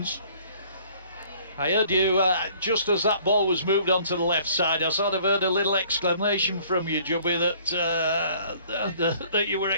I heard you, just as that ball was moved onto the left side, I sort of heard a little exclamation from you, Jubby, that you were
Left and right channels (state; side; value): inverted; both; correlation -0.56